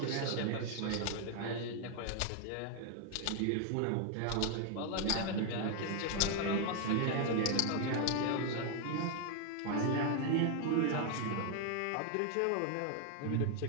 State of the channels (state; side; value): different; both; correlation 0.00